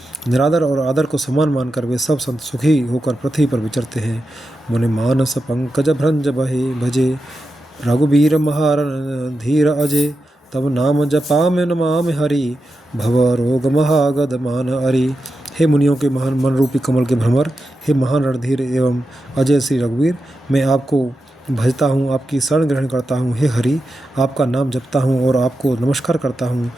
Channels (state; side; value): normal; both; correlation 0.89